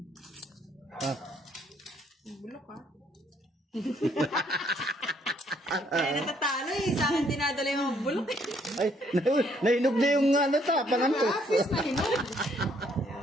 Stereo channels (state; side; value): normal; both; correlation 0.67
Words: Ah. Bulok ah. Kaya natatalo eh. Sa akin dinadala yung mga bulok eh. Ay, nainog na yung ano ta, pangantos. Office na hinog.